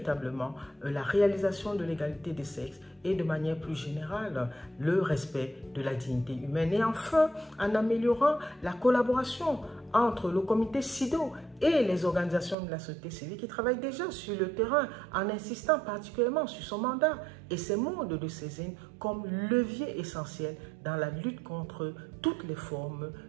la réalisation de l'égalité des sexes et de manière plus générale le respect de la dignité humaine. Et enfin, en améliorant la collaboration entre le comité SIDO et les organisations de la société civile qui travaillent déjà sur le terrain en insistant particulièrement sur son mandat et ses modes de saisine comme levier essentiel dans la lutte contre toutes les formes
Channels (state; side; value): drops out; left; at 12.6 s